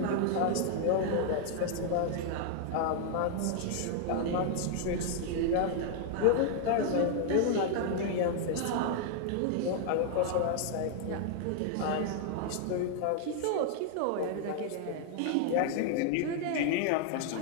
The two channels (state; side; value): different; both; correlation 0.00